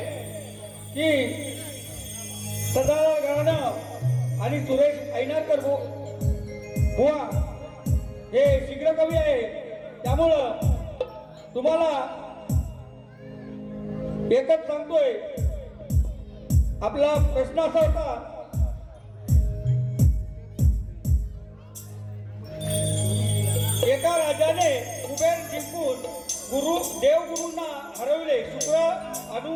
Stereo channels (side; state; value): both; identical; correlation 1.00